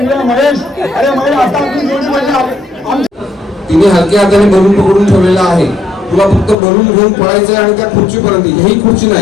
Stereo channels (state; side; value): drops out; right; at 6.6 s